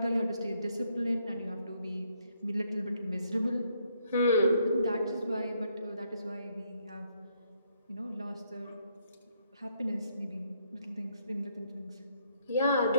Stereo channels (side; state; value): both; inverted; correlation -0.72